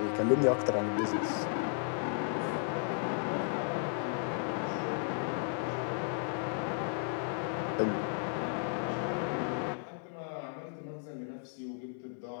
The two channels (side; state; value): right; silent; digital silence